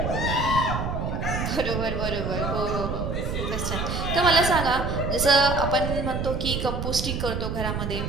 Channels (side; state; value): right; noise; rumble, 2 dB below the sound